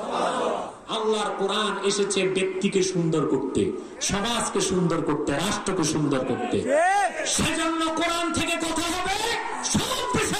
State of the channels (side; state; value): both; identical; correlation 1.00